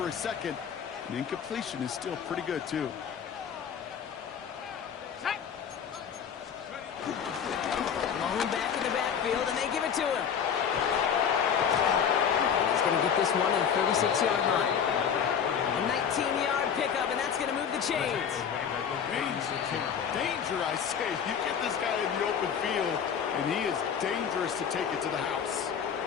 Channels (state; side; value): quieter; right; 7.6 dB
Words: a second. And incompletion is still pretty good, too. Back in the backfield, and they give it to him. He's going to get this one at the 36-yard line. A 19-yard pickup, and that's going to move the chains. Danger, I say. You get this guy in the open field, and he is dangerous to take it to the house.